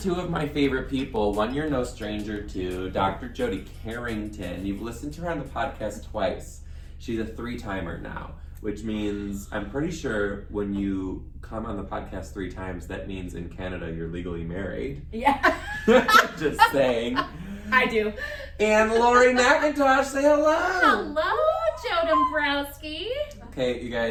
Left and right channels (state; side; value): identical; both; correlation 1.00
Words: two of my favorite people, one you're no stranger to, Dr. Jody Carrington. You've listened to her on the podcast twice. She's a 3-timer now, which means I'm pretty sure when you come on the podcast 3 times, that means in Canada you're legally married. Yeah. Just saying. I do. And Laurie McIntosh, say hello. Hello, Joe Dombrowski. Okay, you